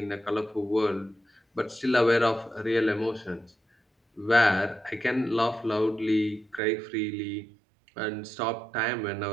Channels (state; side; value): drops out; left; at 6.6 s